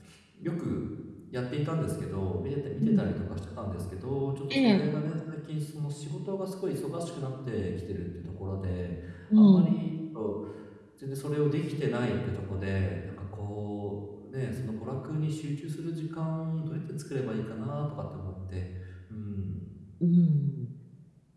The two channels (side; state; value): both; identical; correlation 1.00